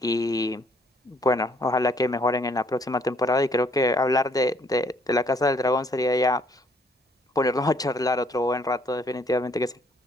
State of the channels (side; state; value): both; normal; correlation 0.65